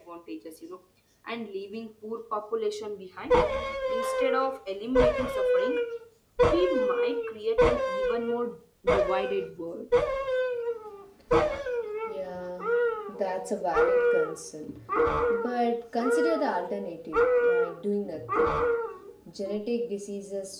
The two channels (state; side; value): identical; both; correlation 1.00